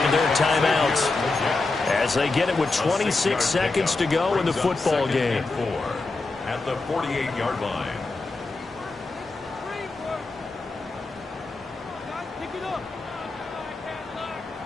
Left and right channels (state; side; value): quieter; right; 3.5 dB